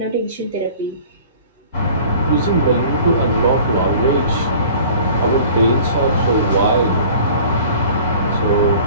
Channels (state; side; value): inverted; both; correlation -0.47